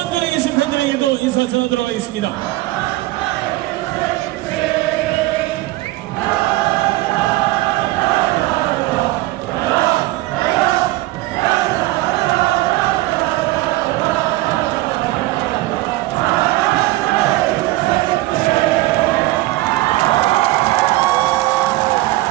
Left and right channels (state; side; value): quieter; left; 18.4 dB